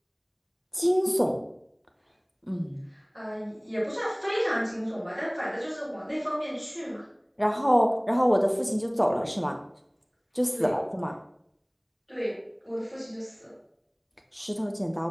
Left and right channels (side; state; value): both; identical; correlation 1.00